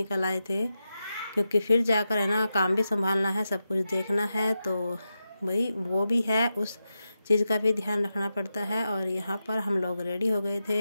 आए थे, क्योंकि फिर जाकर है ना काम भी संभालना है, सब कुछ देखना है। तो वही वो भी है, उस चीज़ का भी ध्यान रखना पड़ता है। और यहाँ पर हम लोग रेडी हो गए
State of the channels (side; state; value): both; inverted; correlation -0.90